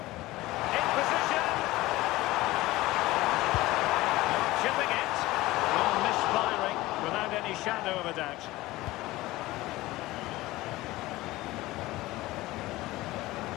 In position. Chipping it. Well, misfiring without any shadow of a doubt.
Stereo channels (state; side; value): quieter; right; 18.4 dB